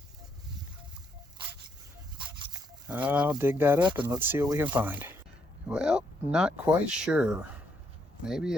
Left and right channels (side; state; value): both; normal; correlation 0.74